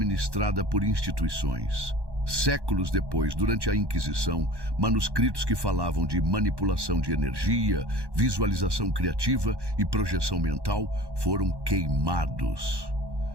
por instituições. Séculos depois, durante a Inquisição, manuscritos que falavam de manipulação de energia, visualização criativa e projeção mental foram queimados.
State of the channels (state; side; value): late; left; 1.1 ms